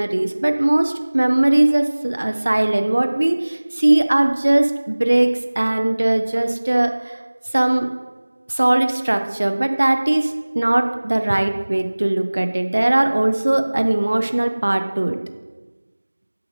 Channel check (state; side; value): inverted; both; correlation -1.00